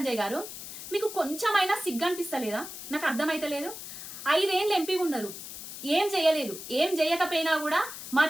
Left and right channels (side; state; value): left; noise; hiss, 10 dB below the sound